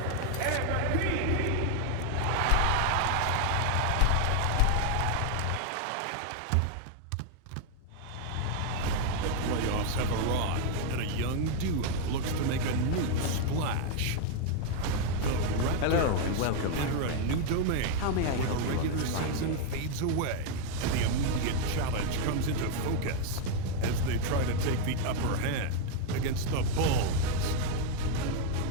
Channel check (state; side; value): different; both; correlation 0.00